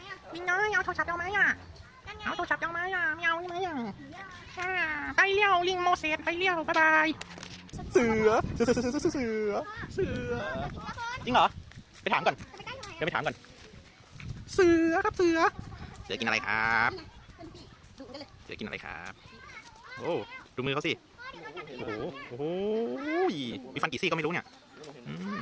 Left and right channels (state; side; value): identical; both; correlation 1.00